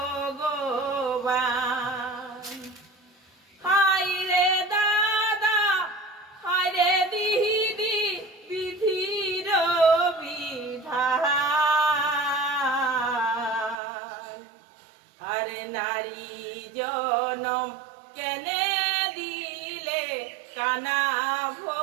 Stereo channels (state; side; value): drops out; left; at 13.8 s